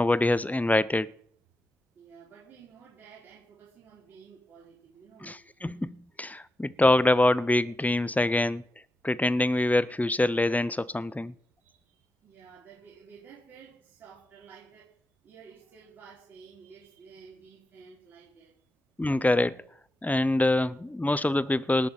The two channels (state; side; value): normal; both; correlation 0.88